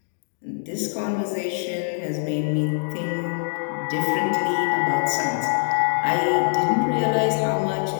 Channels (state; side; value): silent; right; digital silence